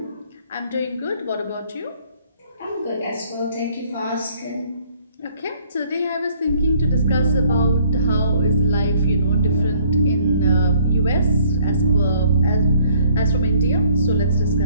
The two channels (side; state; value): both; inverted; correlation -0.61